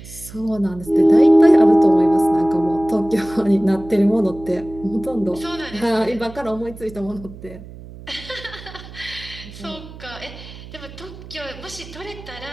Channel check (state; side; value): noise; right; hum, 16 dB below the sound